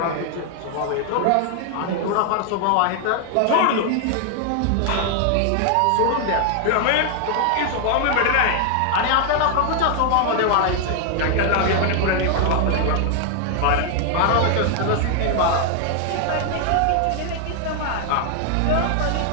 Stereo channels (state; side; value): different; both; correlation 0.00